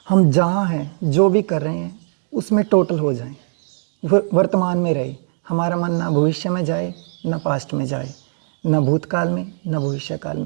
हम जहाँ हैं, जो भी कर रहे हैं, उसमें टोटल हो जाएं, वर्तमान में रहे। हमारा मन ना भविष्य में जाए, ना पास्ट में जाए, ना भूतकाल में, ना भविष्य काल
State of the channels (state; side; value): silent; left; digital silence